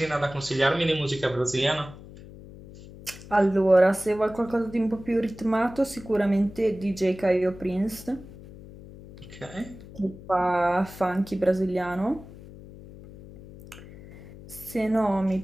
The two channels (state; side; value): noise; left; hum, 17 dB below the sound